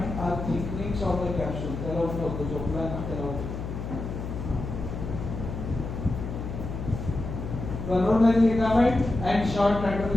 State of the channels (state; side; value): noise; left; hum, 6 dB below the sound